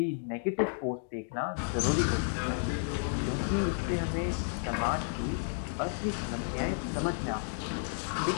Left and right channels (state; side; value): silent; right; digital silence